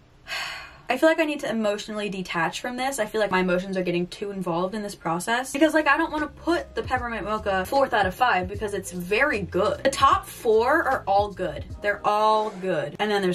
I feel like I need to emotionally detach from this. I feel like my emotions are getting too involved in this process because like I don't want to put the peppermint mocha 4th out of 5 because it's very good. The top 4 are all good. They're all good. And then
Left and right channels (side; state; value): both; identical; correlation 1.00